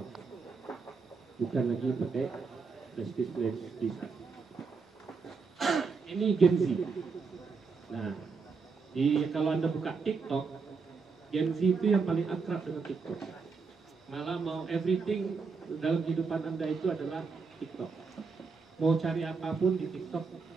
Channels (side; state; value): left; quieter; 4.9 dB